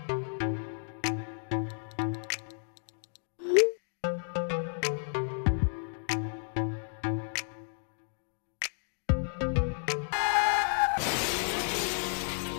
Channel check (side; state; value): right; silent; 56 dB below the other